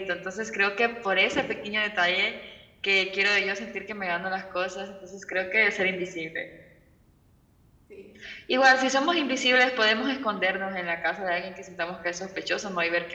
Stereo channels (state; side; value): identical; both; correlation 1.00